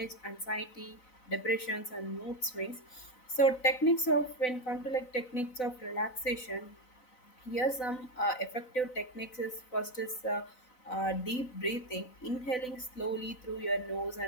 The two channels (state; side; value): late; right; 4.0 ms